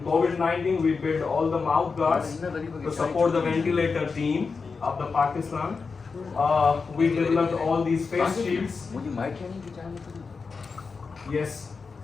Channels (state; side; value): quieter; right; 4.8 dB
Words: COVID-19 we built all the mouth guards to support the ventilator team of the Pakistan. We developed all these face shields. Yes,